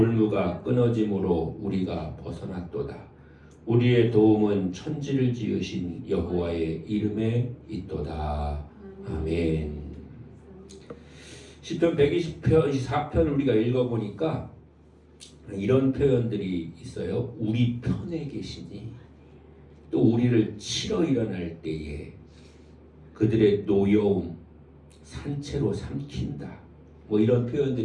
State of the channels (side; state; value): both; identical; correlation 1.00